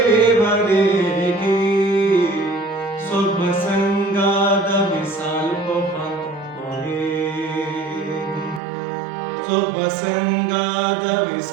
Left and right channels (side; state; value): left; drops out; at 8.6 s